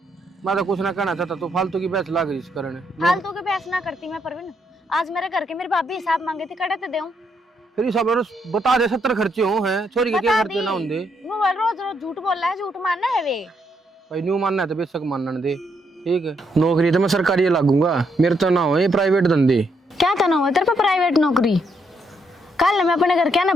मैं तो कुछ ना कहना चाहता, तो फालतू की बहस लाग रही इस कारण। फालतू के बहस ना करती मैं परवीन, आज मेरे घर के मेरी भाभी हिसाब मांगे थी, कड़े तो देऊं। फिर ये सब बता दे, 70 खर्चे हो हैं, छोरी के क्या बता खर्चे दी। ना होंगे। वो रोज रोज झूठ बोल रहा है, झूठ मानना है वे। भाई न्यू मानना है तो बेशक मानने दे, ठीक है। नौकरी तो मैं सरकारी लागूंगा, मेरे तो ना हो ये प्राइवेट धंधे। क्या करना हुआ तेरे पे प्राइवेट नौकरी? कल मैं अपने घर क्या ना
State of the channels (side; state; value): both; normal; correlation 0.75